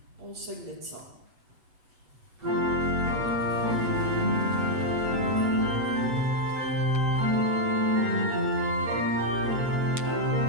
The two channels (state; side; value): late; left; 8.0 ms